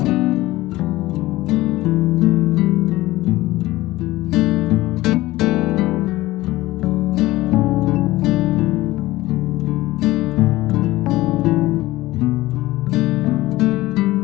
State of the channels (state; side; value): quieter; right; 17.9 dB